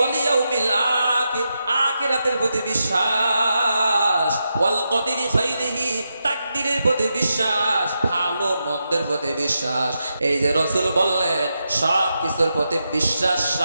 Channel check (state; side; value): inverted; both; correlation -0.86